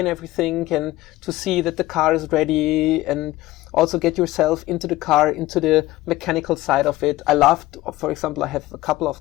everything and to see that the car is ready, and also get yourself into the car, into the mechanical side of it. I love, for example, I have a couple of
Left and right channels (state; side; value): quieter; right; 17.1 dB